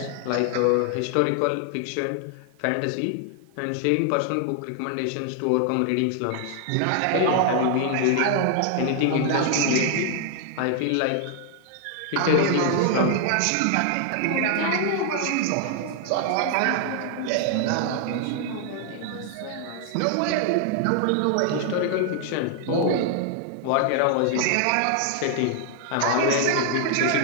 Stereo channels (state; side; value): different; both; correlation 0.00